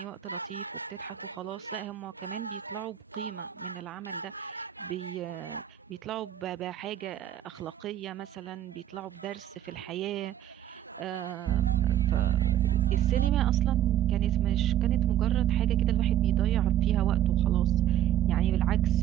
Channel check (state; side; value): quieter; left; 11.4 dB